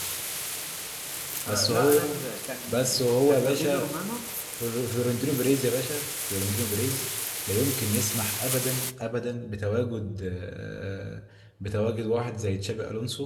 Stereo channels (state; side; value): identical; both; correlation 1.00